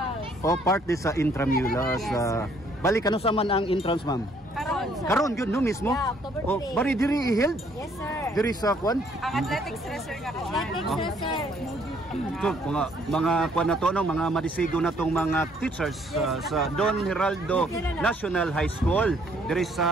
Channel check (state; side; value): normal; both; correlation 0.65